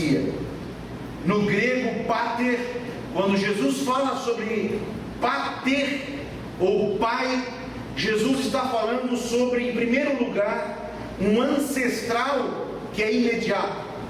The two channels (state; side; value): identical; both; correlation 1.00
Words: No grego, pater, quando Jesus fala sobre pater ou pai, Jesus está falando sobre, em primeiro lugar, um ancestral que é imediato,